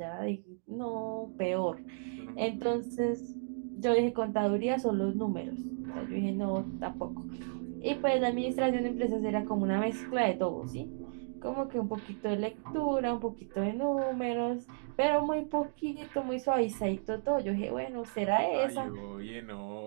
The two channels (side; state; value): left; silent; digital silence